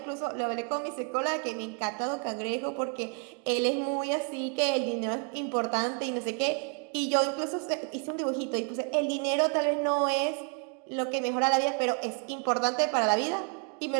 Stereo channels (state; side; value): quieter; left; 39.7 dB